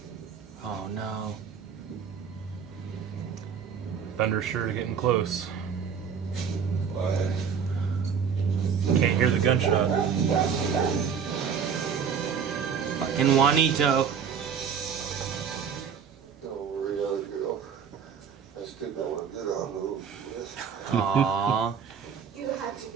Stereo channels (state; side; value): quieter; left; 7.0 dB